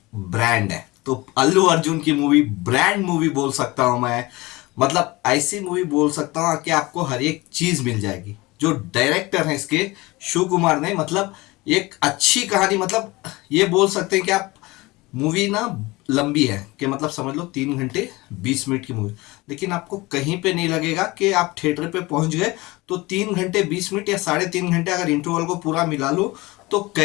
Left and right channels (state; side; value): quieter; right; 21.8 dB